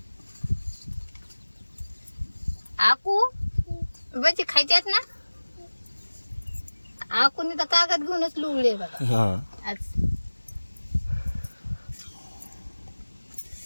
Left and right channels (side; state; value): both; inverted; correlation -1.00